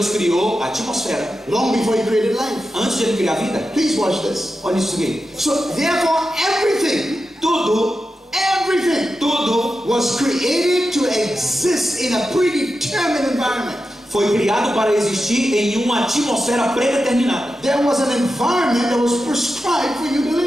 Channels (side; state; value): both; normal; correlation 0.91